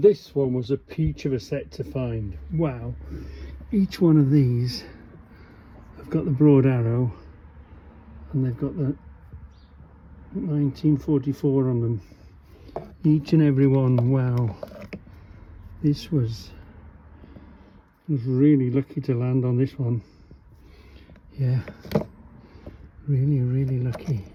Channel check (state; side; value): identical; both; correlation 1.00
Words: this one was a peach of a set to find. Wow, each one of these have got the broad arrow and they've got the 1944 on them. Each and every one. Wow, this was really lucky to land on this one. Yeah, really lucky